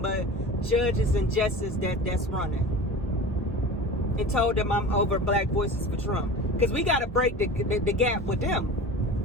but judges and justices that's running. And told them I'm over Black Voices for Trump. Because we got to break the gap with them.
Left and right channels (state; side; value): normal; both; correlation 0.34